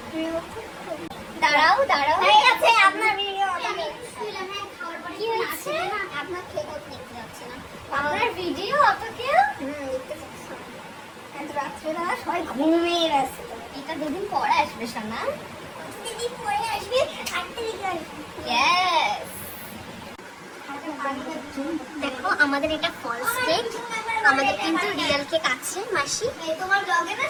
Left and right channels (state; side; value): identical; both; correlation 1.00